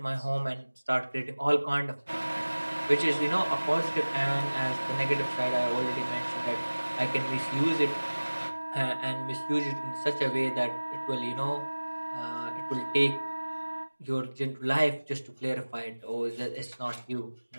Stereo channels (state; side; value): inverted; both; correlation -1.00